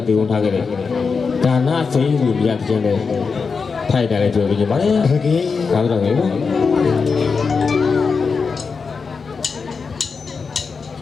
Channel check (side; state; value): right; quieter; 5.1 dB